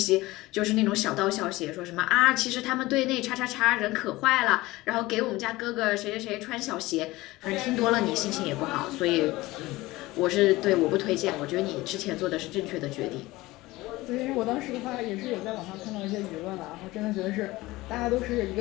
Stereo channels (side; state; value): right; quieter; 19.4 dB